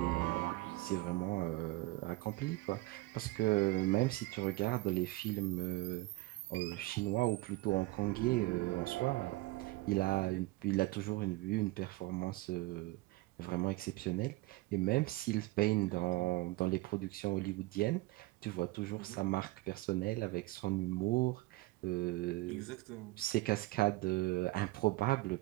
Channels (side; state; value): left; quieter; 20.5 dB